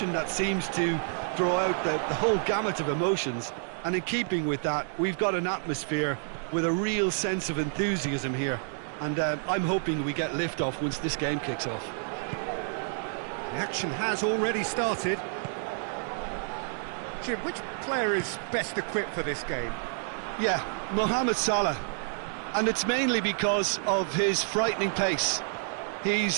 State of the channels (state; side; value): silent; left; 58 dB below the other